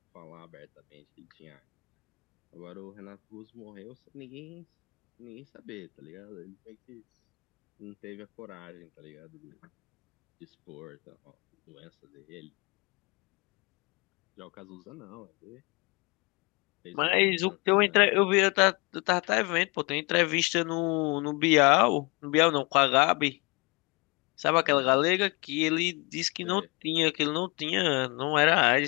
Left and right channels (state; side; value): quieter; right; 27.4 dB